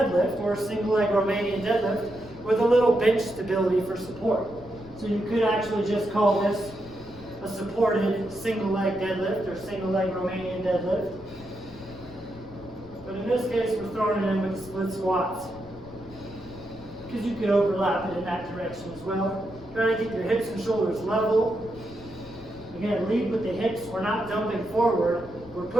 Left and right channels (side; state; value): left; noise; rumble, 19 dB below the sound